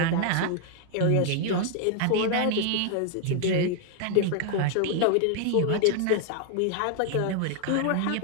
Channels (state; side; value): different; both; correlation 0.00